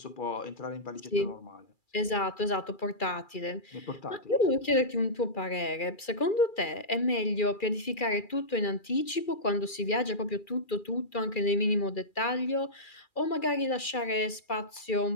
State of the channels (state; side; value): late; right; 2.4 ms